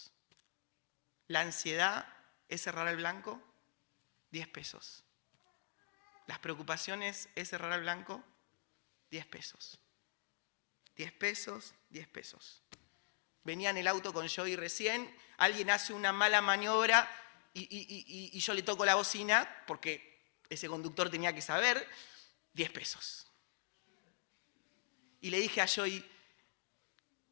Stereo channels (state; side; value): silent; right; digital silence